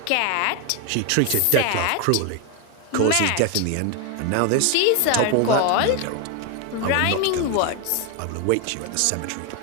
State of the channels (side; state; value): both; different; correlation 0.01